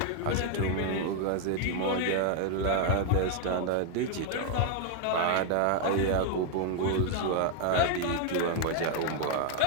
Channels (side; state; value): both; different; correlation 0.00